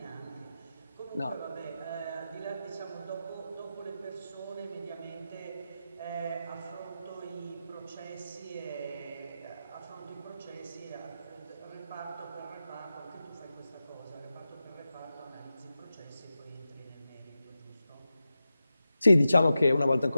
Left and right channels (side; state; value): both; inverted; correlation -0.92